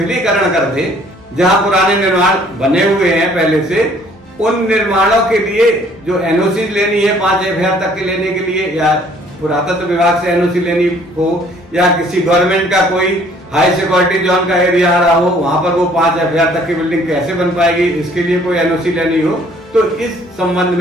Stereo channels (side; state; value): both; normal; correlation 0.59